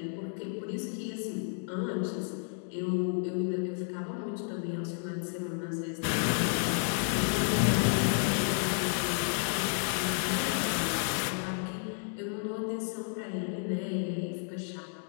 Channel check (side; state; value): right; silent; 57 dB below the other